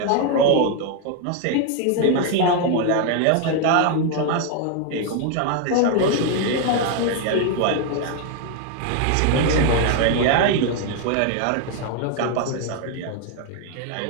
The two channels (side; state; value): both; different; correlation 0.01